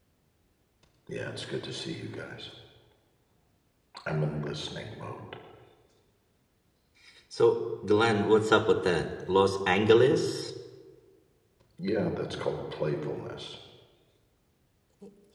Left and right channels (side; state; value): both; identical; correlation 1.00